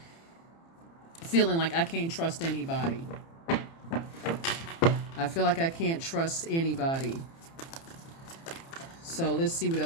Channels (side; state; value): right; late; 30 ms